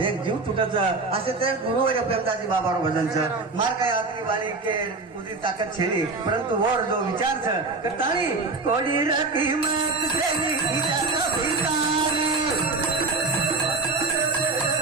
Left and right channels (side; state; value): left; quieter; 3.8 dB